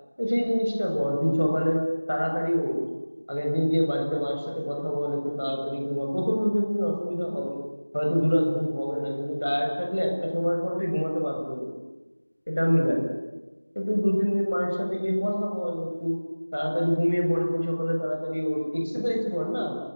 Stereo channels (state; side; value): inverted; both; correlation -1.00